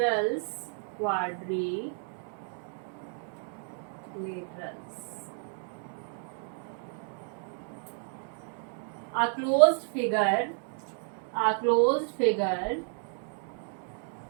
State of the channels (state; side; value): silent; left; 57 dB below the other